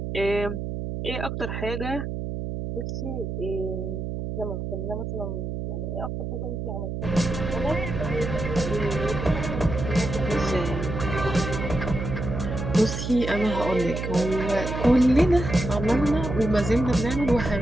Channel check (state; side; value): noise; right; hum, 4 dB below the sound